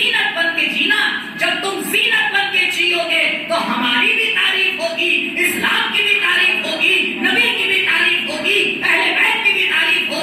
بن کے جینا، جب تم زینت بن کے جیو گے تو ہماری بھی تعریف ہوگی، اسلام کی بھی تعریف ہوگی، نبی کی بھی تعریف ہوگی، اہل بیت کی بھی تعریف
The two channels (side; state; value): both; identical; correlation 1.00